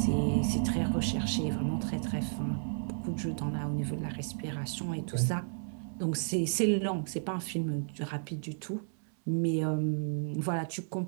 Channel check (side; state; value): left; silent; 56 dB below the other